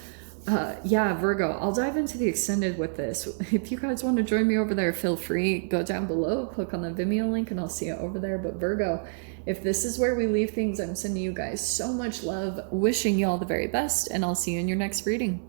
yeah, Virgo, I'll dive into the extended with this. If you guys want to join me over there, feel free, go down below, click on the Vimeo link, and I'll see you over there. But Virgo, if this is where we leave things, I'm sending you guys so much love, wishing you all the very best, and I'll see you in your next reading.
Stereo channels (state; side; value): silent; left; 60 dB below the other